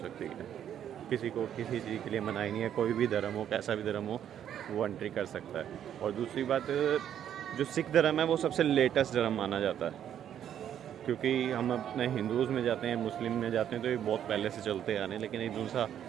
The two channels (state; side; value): quieter; left; 9.9 dB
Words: है। किसी को किसी चीज़ के लिए मनाही नहीं है, कोई भी धर्म हो, कैसा भी धर्म हो, वो एंट्री कर सकता है। और दूसरी बात, जो सिख धर्म है वो सबसे लेटेस्ट धर्म माना जाता है, क्योंकि हम अपने हिंदूज़ में जाते हैं, मुस्लिम में जाते हैं तो ये बहुत पहले से चलते आ रहे हैं, लेकिन ये दूसरा